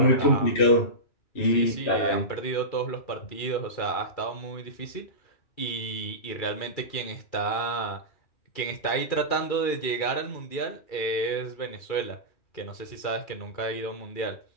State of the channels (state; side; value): late; right; 2.4 ms